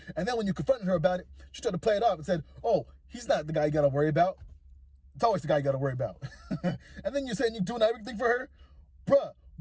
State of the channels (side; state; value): both; identical; correlation 1.00